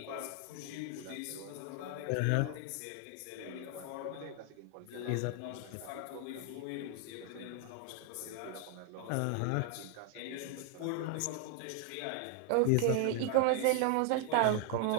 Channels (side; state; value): both; different; correlation 0.00